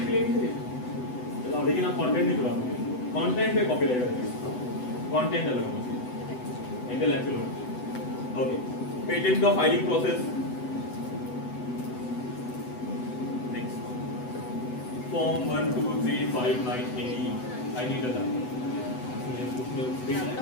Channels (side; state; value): right; late; 8.0 ms